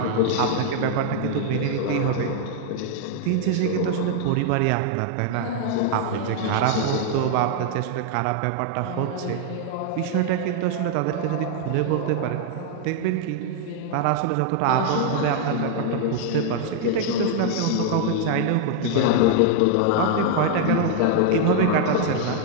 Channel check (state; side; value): different; both; correlation 0.00